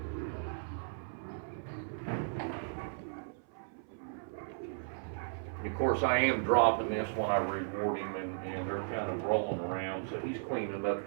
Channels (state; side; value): silent; left; 54 dB below the other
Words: Of course, I am dropping this when I reward him, and they're kind of rolling around, so he's cleaning up the